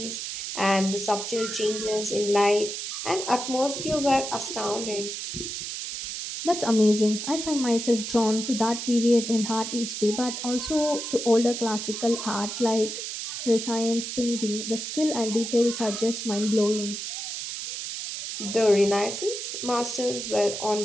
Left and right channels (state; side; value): noise; right; hiss, 6 dB below the sound